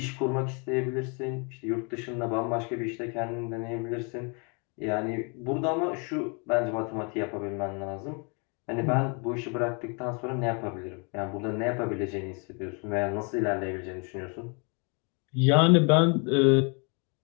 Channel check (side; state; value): right; quieter; 35.0 dB